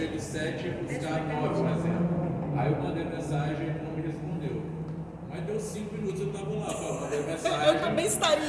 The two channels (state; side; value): identical; both; correlation 1.00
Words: de 7 e buscar 9, por exemplo. Aí eu mandei mensagem e ele não me respondeu. Mas deu 5 minutos, eu tava lá, pô, mandei mensagem. Eu também